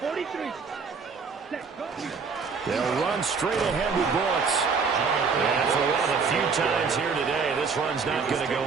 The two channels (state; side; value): quieter; left; 5.2 dB